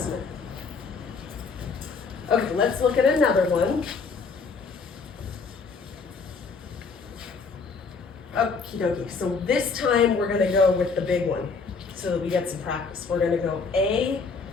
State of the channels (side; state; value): right; quieter; 4.7 dB